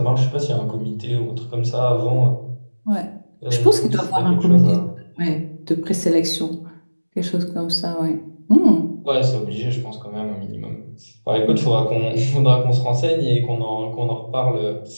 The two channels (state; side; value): inverted; both; correlation -1.00